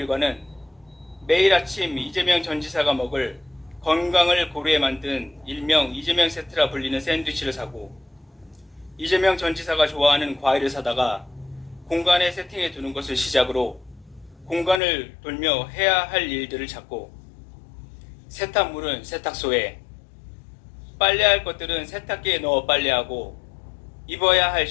매일 아침 이재명 전 지사가 먹을 건강을 고려해 만든 일명 이재명 세트라 불리는 샌드위치를 사고 이재명 전 지사가 좋아하는 과일을 사다가 공간에 세팅해 두는 것을 시작으로 공간을 돌며 해야 할 일들을 찾고 세탁물은 세탁소에, 빨래할 것들은 세탁기에 넣어 빨래하고 입어야 할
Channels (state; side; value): drops out; right; at 14.8 s